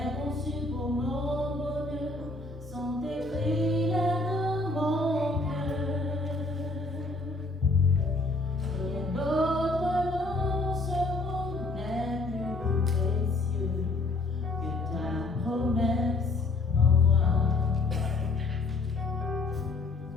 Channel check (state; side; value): quieter; right; 3.1 dB